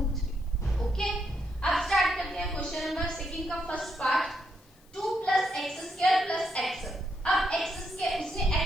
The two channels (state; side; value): noise; left; hiss, 30 dB below the sound